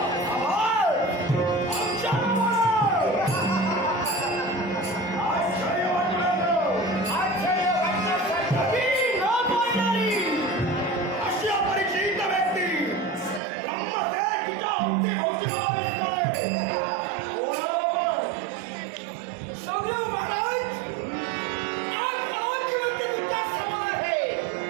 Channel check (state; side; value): drops out; left; at 13.4 s